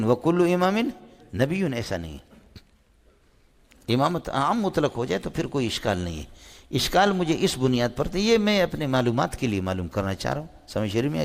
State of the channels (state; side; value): identical; both; correlation 1.00